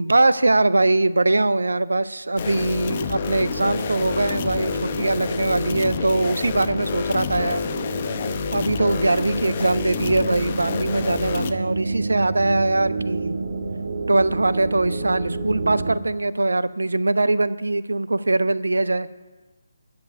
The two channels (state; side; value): inverted; both; correlation -0.94